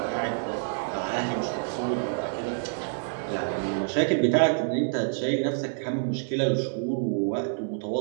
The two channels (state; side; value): silent; left; digital silence